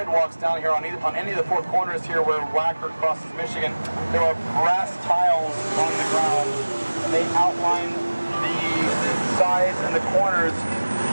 down here on any of the four corners here where Wacker crosses Michigan. There are brass tiles on the ground, and they outline the sides and the corners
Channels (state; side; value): inverted; both; correlation -1.00